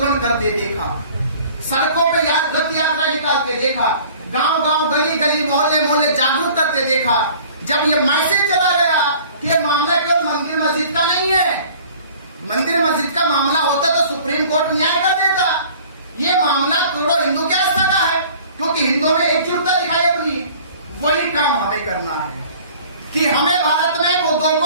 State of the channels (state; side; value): inverted; both; correlation -0.49